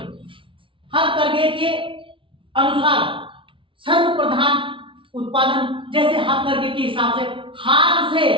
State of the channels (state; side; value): late; left; 0.25 ms